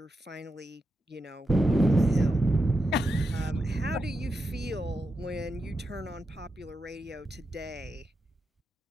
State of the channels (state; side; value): normal; both; correlation 0.87